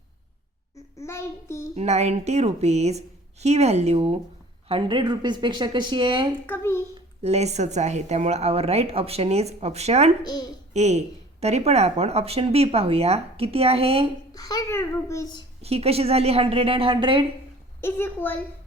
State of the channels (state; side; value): normal; both; correlation 0.49